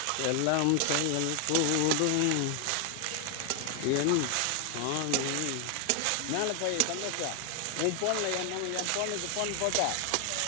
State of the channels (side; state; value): both; different; correlation 0.00